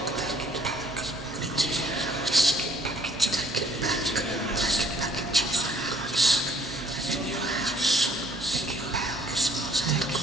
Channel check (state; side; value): normal; both; correlation 0.60